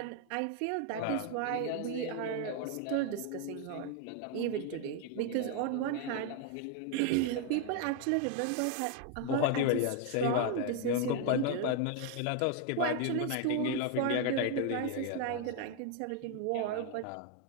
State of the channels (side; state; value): both; different; correlation 0.01